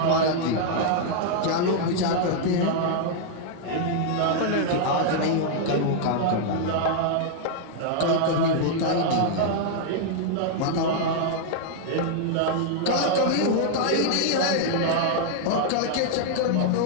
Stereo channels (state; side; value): different; both; correlation -0.01